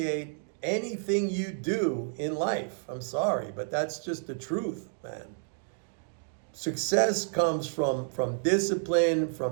anything you do in life. I'm sorry, but that's just the truth, man. Success comes from discipline,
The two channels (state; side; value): silent; left; digital silence